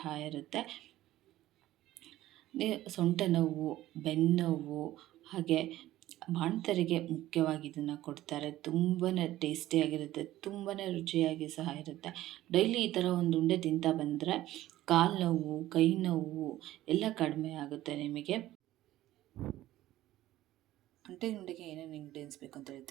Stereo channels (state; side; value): quieter; left; 15.0 dB